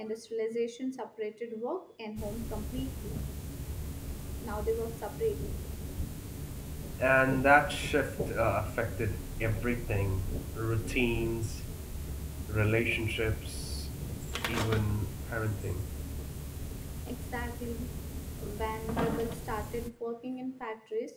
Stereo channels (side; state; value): both; identical; correlation 1.00